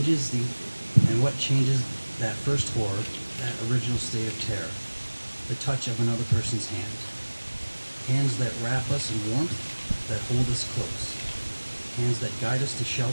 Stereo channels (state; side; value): inverted; both; correlation -1.00